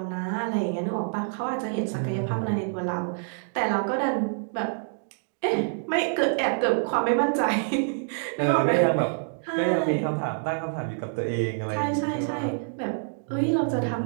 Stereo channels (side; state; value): left; silent; digital silence